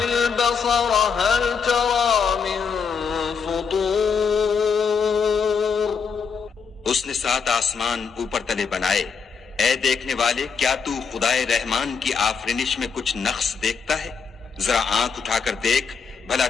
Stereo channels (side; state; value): right; quieter; 5.9 dB